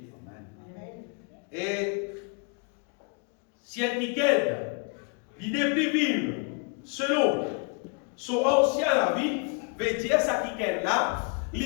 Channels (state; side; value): quieter; right; 35.0 dB